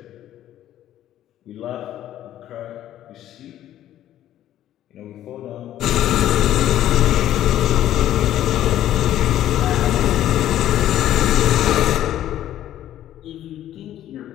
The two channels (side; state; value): right; quieter; 12.3 dB